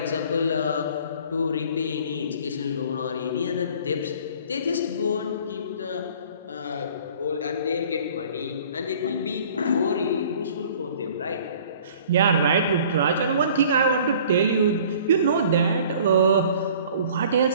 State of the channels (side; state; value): both; inverted; correlation -0.51